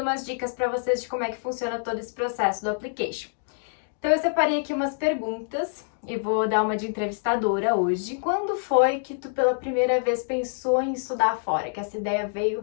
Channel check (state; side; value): silent; right; digital silence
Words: umas dicas para vocês de como é que funciona todo esse processo do application. Então eu separei aqui umas perguntas e vou dar uma de entrevistadora hoje. Quando foi que tu pela primeira vez pensou em estudar fora? Que essa ideia veio